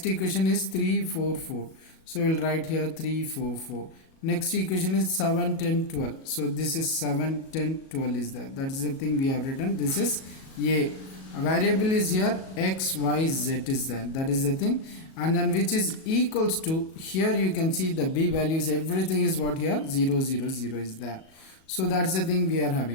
equation is 3 4 4, so we will write here 3 4 4. Next equation is 7 10 12, so this is 7 10 12 is there. That is the thing we have written. This is a variable is here, x y z is there. That is the thing. And then which is equals to, here you can see the b values, everything is what here? 0 0 0 is there. So that's the thing we are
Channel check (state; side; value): late; right; 37 ms